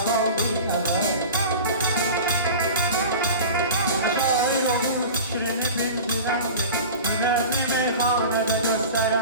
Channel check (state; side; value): inverted; both; correlation -0.34